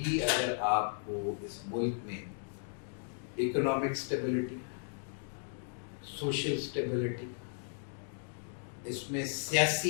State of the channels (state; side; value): silent; right; digital silence